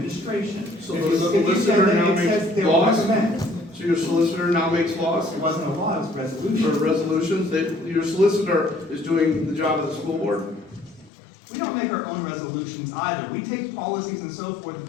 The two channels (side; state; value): right; drops out; at 11.1 s